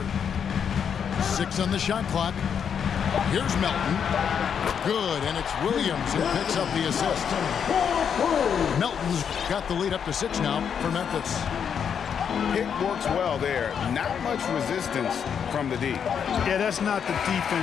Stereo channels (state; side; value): quieter; right; 7.5 dB